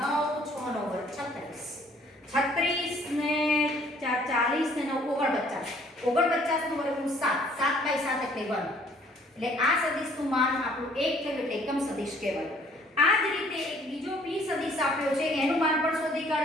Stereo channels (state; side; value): normal; both; correlation 0.59